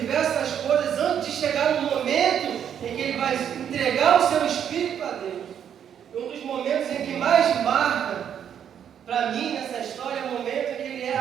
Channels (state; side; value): quieter; left; 8.9 dB